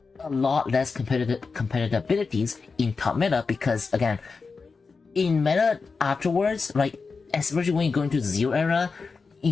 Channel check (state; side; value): quieter; right; 4.6 dB